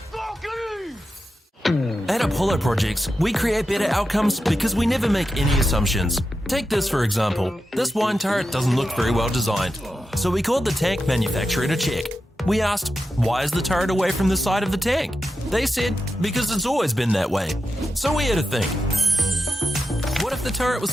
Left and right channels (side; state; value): both; normal; correlation 0.89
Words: At Apollo Projects, we create better outcomes because we never make any assumptions. Take this for example. This wine turret doesn't look very well designed. So we called the tank manufacturer to check. We asked, why is the turret away from the side of the tank? They said, because it's always been that way. So we had to think. What if the turret